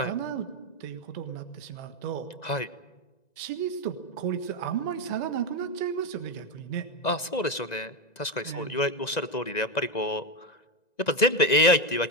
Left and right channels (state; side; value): late; right; 1.9 ms